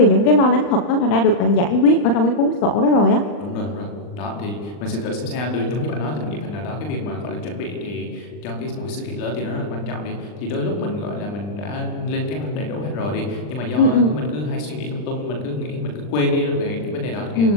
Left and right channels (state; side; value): late; right; 40 ms